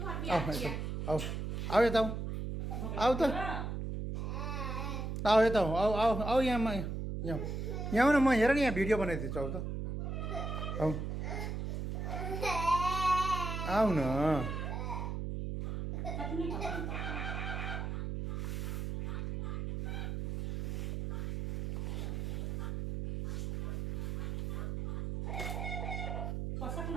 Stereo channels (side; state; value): right; noise; hum, 3 dB below the sound